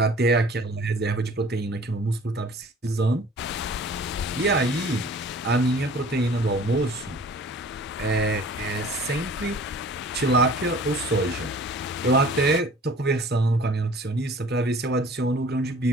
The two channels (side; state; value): both; normal; correlation 0.48